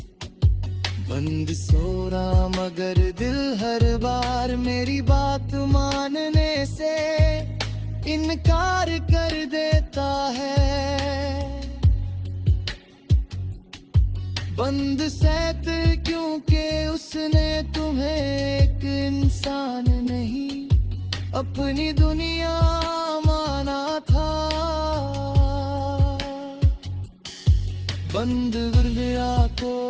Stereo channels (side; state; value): both; identical; correlation 1.00